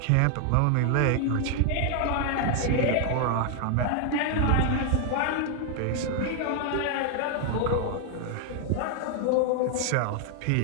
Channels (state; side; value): different; both; correlation 0.00